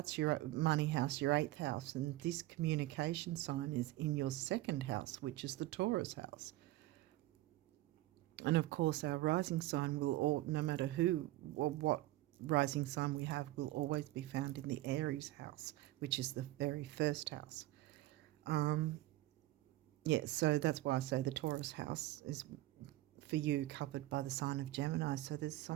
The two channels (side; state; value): left; quieter; 17.0 dB